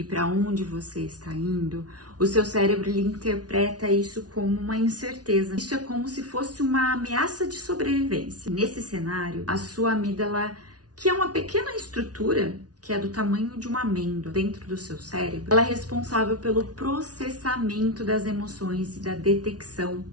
para onde você está indo, o seu cérebro ele interpreta isso como uma incerteza. Isso é como se fosse uma ameaça de sobrevivência. Nesse cenário, a sua amígdala, que é uma pequena estrutura que é do tamanho de uma amêndoa dentro do seu cérebro, ela é responsável pelo processamento das emoções e da detecção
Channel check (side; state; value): left; late; 0.69 ms